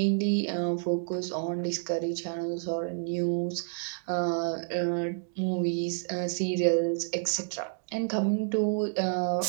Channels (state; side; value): silent; left; digital silence